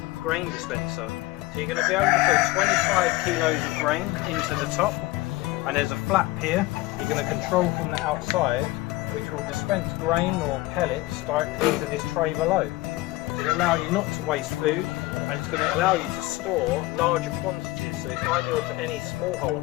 grain dispenser. So you're going to be able to put 25 kilos of grain into the top, and there's a flap here you're going to control from the outside, which will dispense grain or pellets directly into this tray below. So it'll allow you not to waste food, and it's going to allow you to store larger quantities, so it's ideal for any small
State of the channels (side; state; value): right; quieter; 19.1 dB